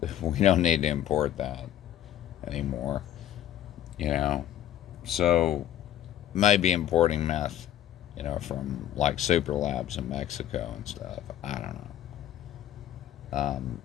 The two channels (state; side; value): quieter; right; 11.4 dB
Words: We don't need to import that anymore, So, maybe importing meth, from like super labs in Mexico and stuff. I don't know.